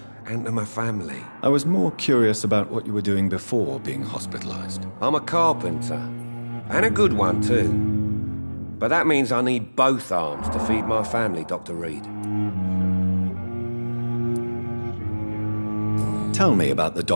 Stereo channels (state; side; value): inverted; both; correlation -1.00